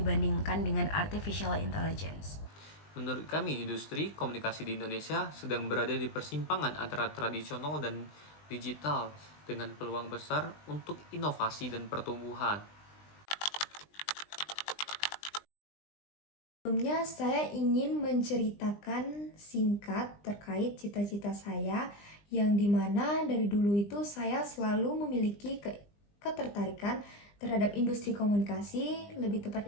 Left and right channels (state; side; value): late; right; 20 ms